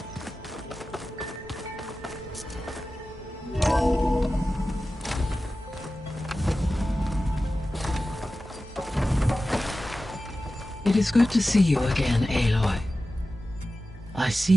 It is good to see you again, Aloy. I see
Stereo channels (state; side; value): normal; both; correlation 0.94